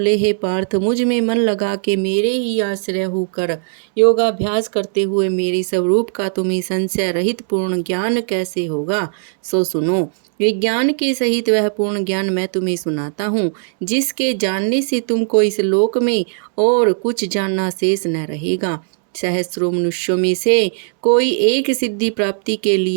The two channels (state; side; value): silent; left; 67 dB below the other